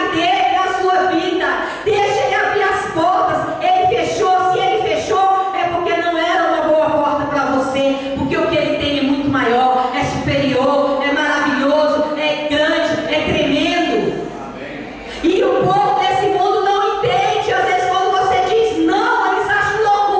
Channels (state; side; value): identical; both; correlation 1.00